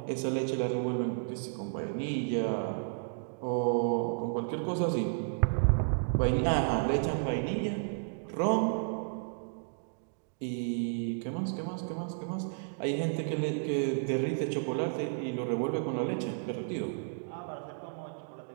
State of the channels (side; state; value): left; silent; digital silence